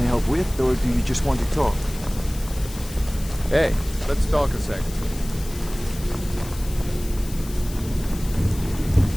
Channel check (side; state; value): left; noise; hiss, 15 dB below the sound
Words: help with, or do you just want to talk? Hey, let's talk a second.